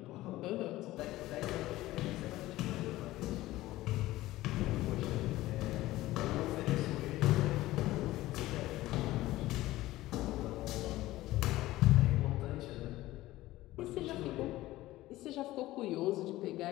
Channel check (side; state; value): right; quieter; 16.8 dB